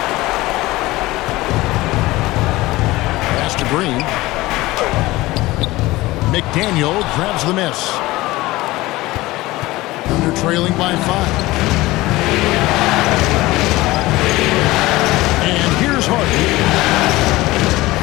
Pass to Green. McDaniel grabs the miss. They're trailing by 5. And here's Harden.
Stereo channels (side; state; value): right; quieter; 19.2 dB